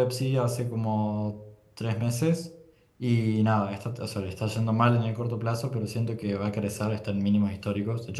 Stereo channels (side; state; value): both; identical; correlation 1.00